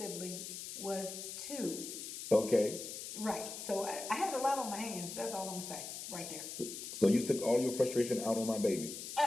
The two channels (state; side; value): noise; left; hiss, 8 dB below the sound